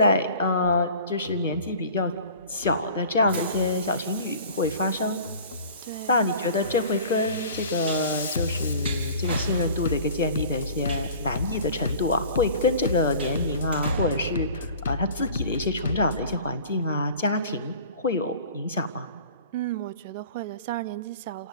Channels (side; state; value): both; inverted; correlation -0.43